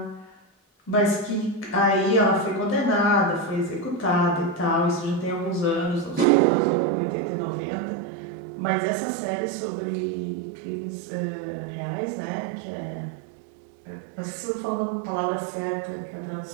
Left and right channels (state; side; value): drops out; left; at 6.2 s